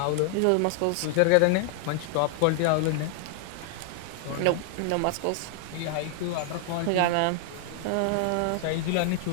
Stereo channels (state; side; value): different; both; correlation 0.00